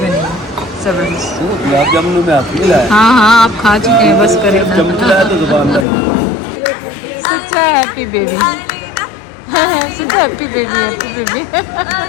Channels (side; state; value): right; drops out; at 5.9 s